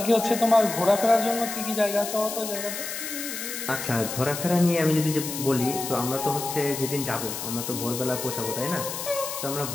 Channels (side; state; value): left; noise; hiss, 6 dB below the sound